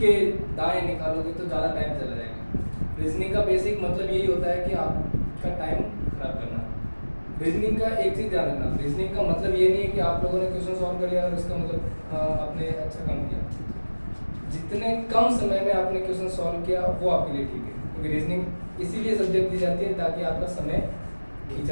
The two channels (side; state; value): both; inverted; correlation -1.00